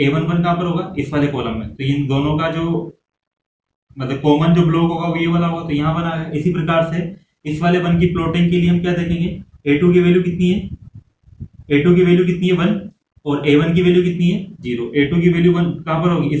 1 कहाँ पर होगा इस वाले कॉलम में, तो इन दोनों का जो मतलब कॉमन जो ब्लॉक होगा वो ये वाला होगा, तो यहाँ बना है। इसी प्रकार से इस वाले 1 की प्लॉटिंग के लिए हम क्या देखेंगे, A2 की वैल्यू कितनी है, A2 की वैल्यू कितनी है 1, और A1 की वैल्यू कितनी है 0। A2 की वैल्यू 1 कहाँ पर होगी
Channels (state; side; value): identical; both; correlation 1.00